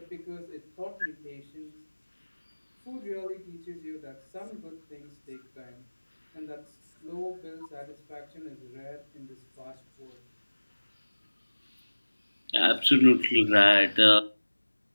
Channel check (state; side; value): inverted; both; correlation -1.00